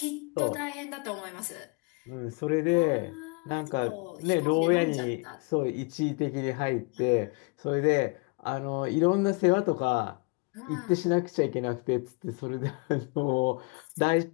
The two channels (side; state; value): right; quieter; 31.6 dB